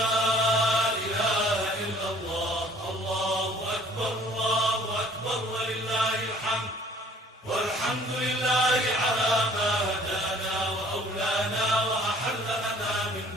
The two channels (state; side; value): normal; both; correlation 0.55